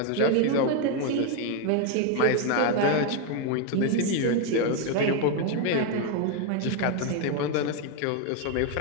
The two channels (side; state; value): both; different; correlation 0.01